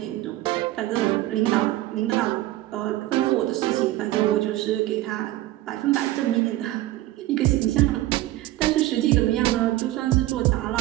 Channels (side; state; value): left; quieter; 16.3 dB